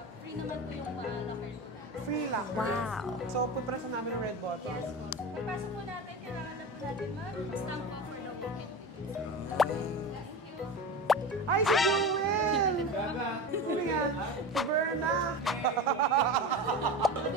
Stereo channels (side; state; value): both; normal; correlation 0.27